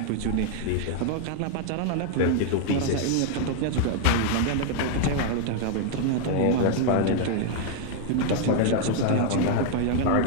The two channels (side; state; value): both; different; correlation 0.00